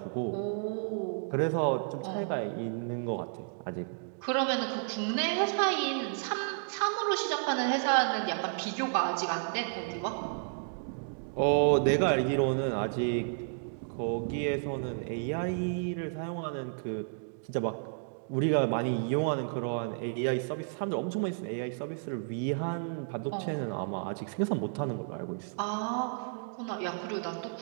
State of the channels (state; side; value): silent; left; digital silence